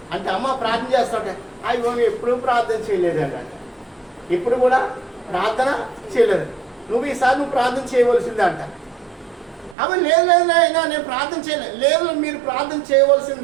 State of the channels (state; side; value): drops out; left; at 9.8 s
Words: అంటే అమ్మ ప్రార్థన చేస్తుంటే అయ్యో ఎప్పుడూ ప్రార్థన చేయలేదండి అంట. ఇప్పుడు కూడా ప్రార్థన చేయలేదు. నువ్వు ప్రార్థన చేయవలసిందే అంట. అవి లేదు నేను ప్రార్థన చేయలేదు. లేదు, మీరు ప్రార్థన